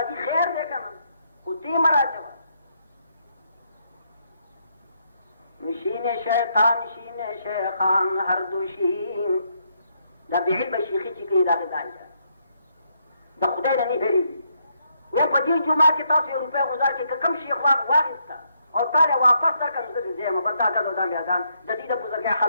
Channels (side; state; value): both; inverted; correlation -0.75